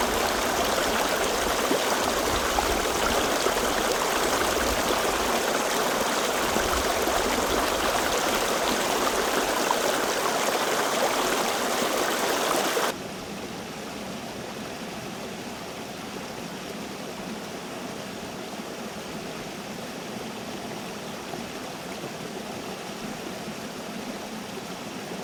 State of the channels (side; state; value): both; identical; correlation 1.00